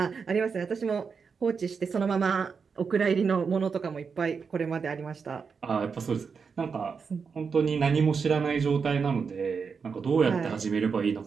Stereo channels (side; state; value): left; quieter; 5.7 dB